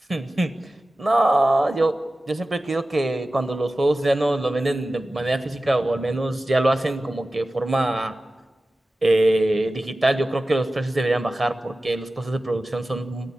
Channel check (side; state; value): both; normal; correlation 0.95